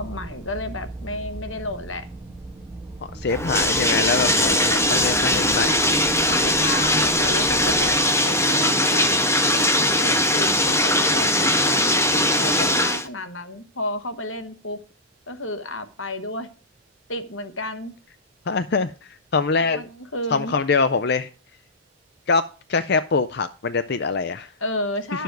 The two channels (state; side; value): normal; both; correlation -0.07